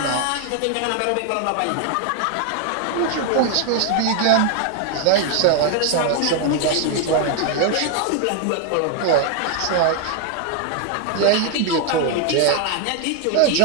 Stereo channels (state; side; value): different; both; correlation 0.00